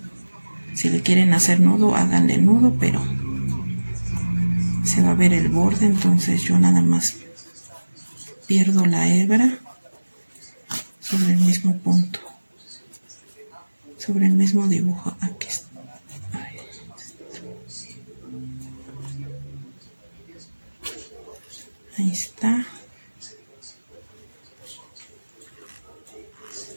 Si le quieren hacer nudo, háganle nudo, pero se va a ver el borde, entonces yo nada más pierdo la hebra sobre el mismo punto, sobre el mismo dibujo. Aquí está. Ahí está.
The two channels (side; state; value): both; inverted; correlation -1.00